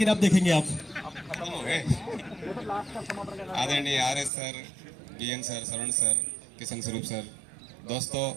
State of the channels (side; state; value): left; drops out; at 4.3 s